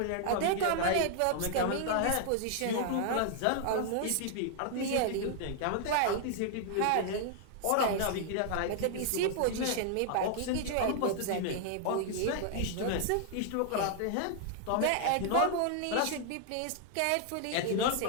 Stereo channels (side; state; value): both; different; correlation 0.00